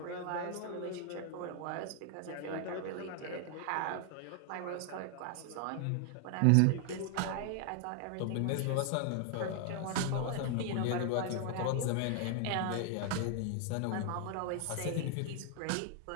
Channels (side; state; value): both; different; correlation 0.00